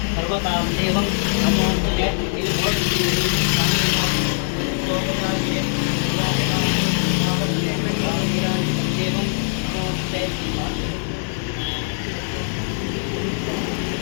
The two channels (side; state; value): right; silent; 55 dB below the other